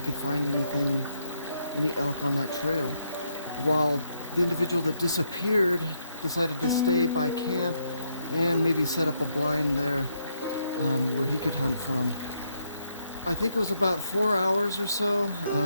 could find any elk on that trail, while the individual that disappeared decided to stay by camp and maybe set up a blind there where he could hunt from. I think it was about 4 hours or so,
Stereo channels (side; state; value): both; inverted; correlation -0.76